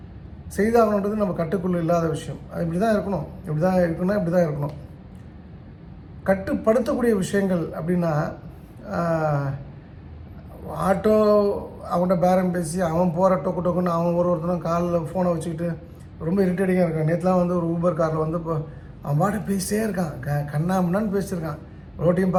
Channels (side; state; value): both; identical; correlation 1.00